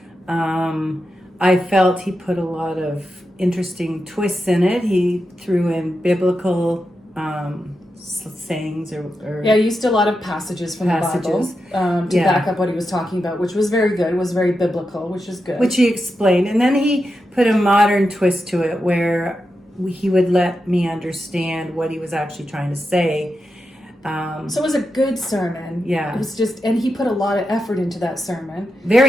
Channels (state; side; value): normal; both; correlation 0.88